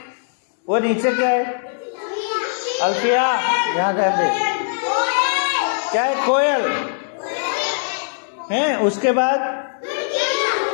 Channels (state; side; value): silent; right; digital silence